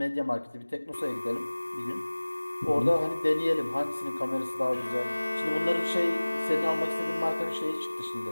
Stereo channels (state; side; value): inverted; both; correlation -1.00